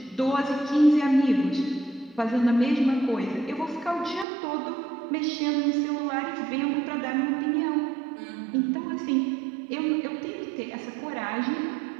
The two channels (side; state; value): left; drops out; at 4.2 s